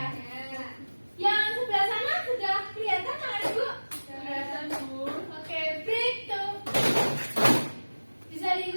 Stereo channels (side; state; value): both; inverted; correlation -1.00